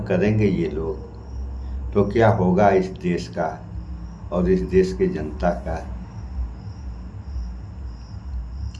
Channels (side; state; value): both; identical; correlation 1.00